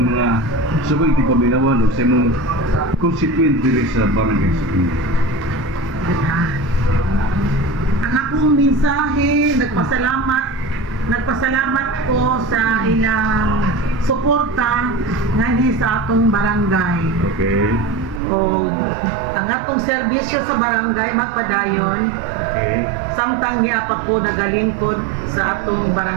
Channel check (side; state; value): left; drops out; at 18.2 s